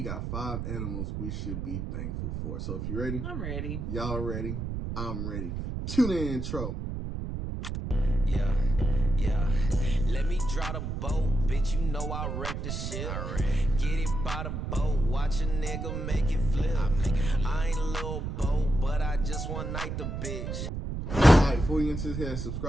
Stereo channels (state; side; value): noise; right; rumble, 4 dB below the sound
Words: got 5 animals we should be thankful for. So if you're ready, I'm ready. Y'all ready? I'm ready. Tune in intro. Yeah. Let me draw the boat, bitch. You know I wreck the shit. Get it by the boat, watch a nigga make it flip. I ain't a little boat, but I just one night the bitch. Alright, before you get into this, hit that